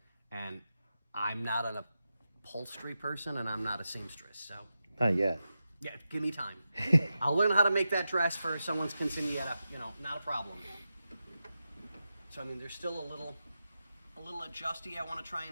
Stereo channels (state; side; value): inverted; both; correlation -0.90